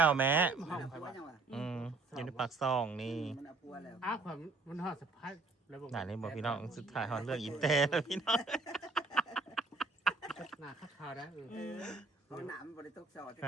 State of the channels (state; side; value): quieter; left; 3.5 dB